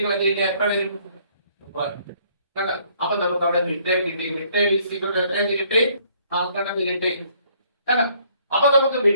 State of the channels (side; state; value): both; inverted; correlation -0.64